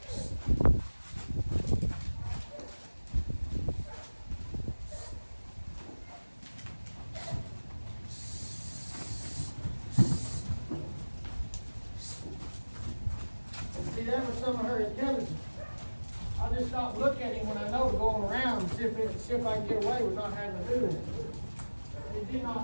See, that was some of her intelligence. I just stopped looking at him when I know to go on around and see if I can get away with not having to do it. It did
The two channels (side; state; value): both; inverted; correlation -1.00